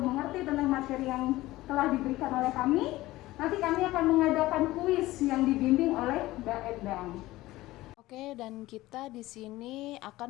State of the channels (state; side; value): quieter; right; 17.6 dB